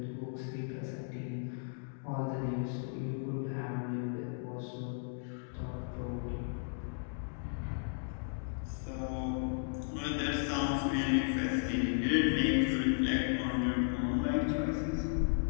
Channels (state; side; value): silent; right; digital silence